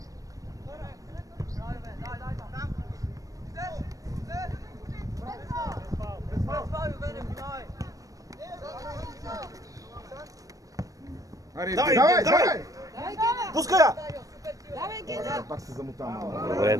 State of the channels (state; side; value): late; left; 0.16 ms